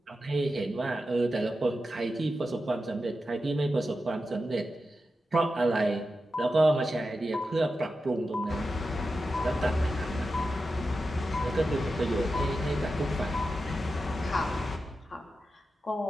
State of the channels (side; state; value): both; normal; correlation 0.91